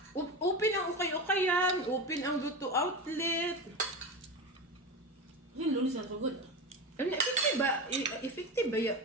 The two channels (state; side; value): normal; both; correlation 0.23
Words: Open ang ukay-ukay yan. Open ang luto outlet. Yung lunis na ito good. Ano, effective ba? Effective ba yan?